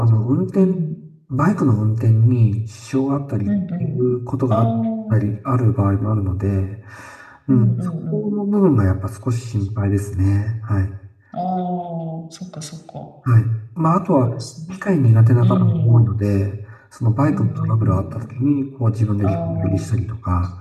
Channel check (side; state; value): both; identical; correlation 1.00